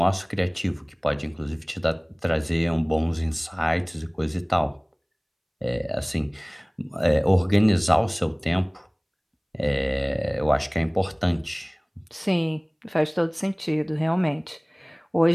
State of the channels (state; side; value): identical; both; correlation 1.00